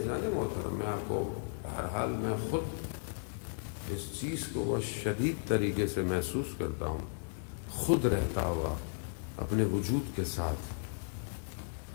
محترم. میں آپ کو بہرحال میں خود اس چیز کو بہت شدید طریقے سے محسوس کرتا ہوں، خود رہتا ہوا اپنے وجود کے ساتھ،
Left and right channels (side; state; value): right; silent; digital silence